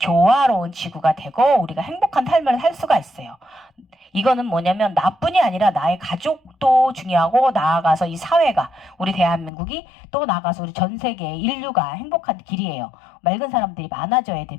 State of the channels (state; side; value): drops out; right; at 9.5 s